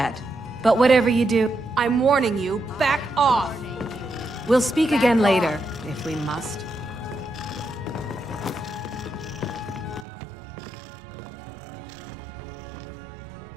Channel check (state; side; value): drops out; left; at 10.1 s